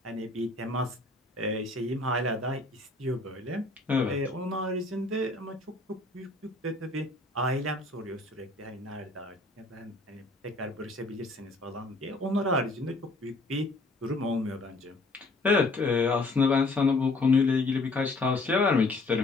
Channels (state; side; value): quieter; right; 3.0 dB